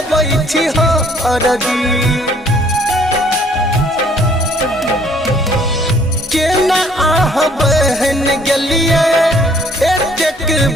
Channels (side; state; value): both; normal; correlation 0.60